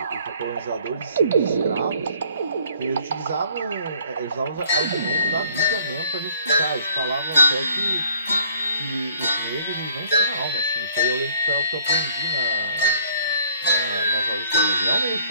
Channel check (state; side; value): inverted; both; correlation -0.58